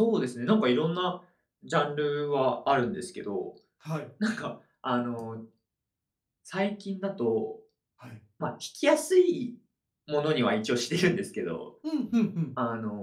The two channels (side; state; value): both; identical; correlation 1.00